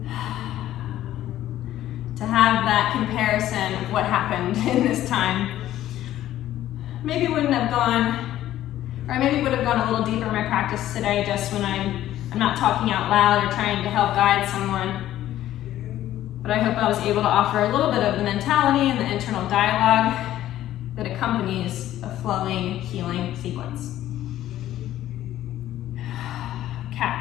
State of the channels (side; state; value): right; quieter; 13.2 dB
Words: To have that comparison of what happened in this time. Maybe wouldn't have gone, or maybe would have gone a little deeper in my practice today just when I'm not talking out loud or trying to help guide someone. But I hope I was able to offer a little bit of the mentality and the internal dialogue that accompanies a flowing, healing sequence.